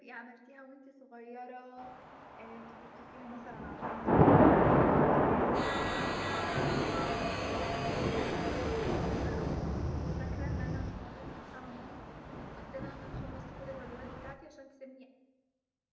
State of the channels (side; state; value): both; identical; correlation 1.00